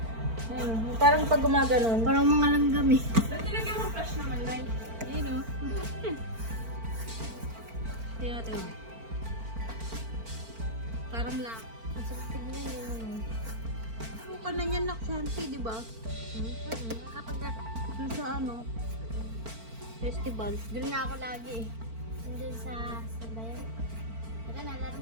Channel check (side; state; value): left; late; 4.4 ms